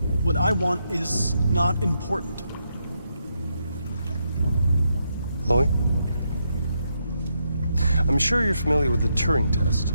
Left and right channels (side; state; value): both; inverted; correlation -0.81